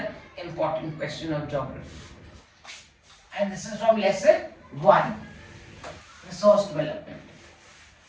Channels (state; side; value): identical; both; correlation 1.00